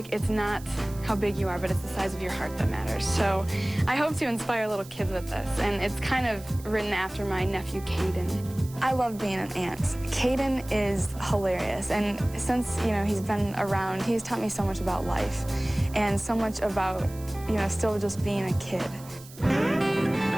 it's not how big you are, but it's the size of your heart that matters. So I hope to inspire little kids with this, and it's kind of written after my nephew, Caden. I love being an aunt. Caden is hilarious, and since, you know, he's been around, he's taught me so much about life and so much about, you know, still just being a kid.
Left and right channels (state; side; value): noise; right; hiss, 20 dB below the sound